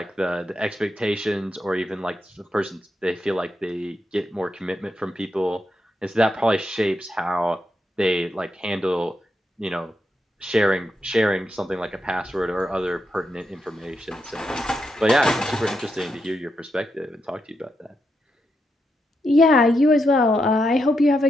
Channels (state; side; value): normal; both; correlation 0.83